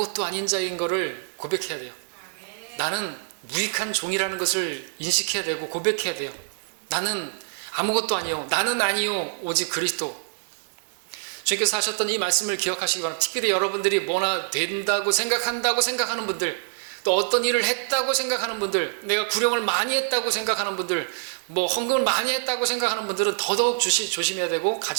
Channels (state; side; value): silent; left; 61 dB below the other